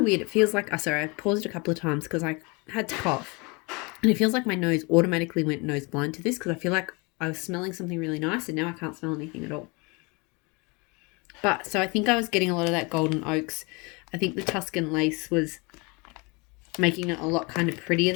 weird. It feels like, sorry, I paused a couple of times because I had to cough. And it feels like my nose automatically went nose blind to this, because I feel like I was smelling something really nice and now I can't smell anything at all. But, so I think I was getting a lot of that golden oaks. I think the Tuscan lace was making it a lot kind of prettier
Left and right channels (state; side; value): quieter; right; 28.6 dB